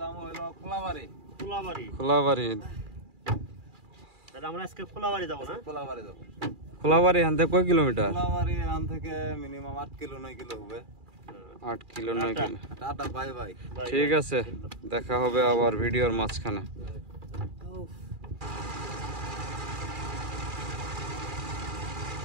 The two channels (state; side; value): late; left; 2.4 ms